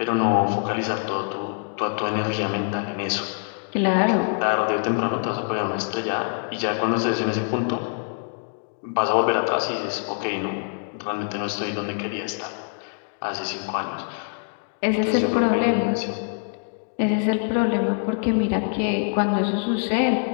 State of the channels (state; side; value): silent; right; 56 dB below the other